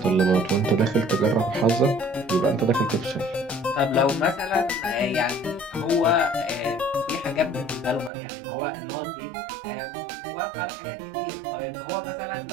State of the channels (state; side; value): drops out; left; at 8.1 s